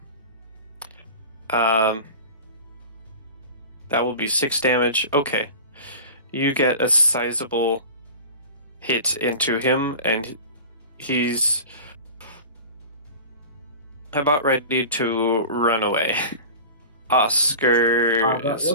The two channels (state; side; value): inverted; both; correlation -0.35